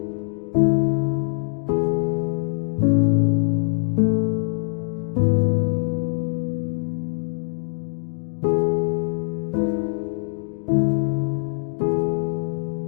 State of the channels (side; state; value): right; silent; digital silence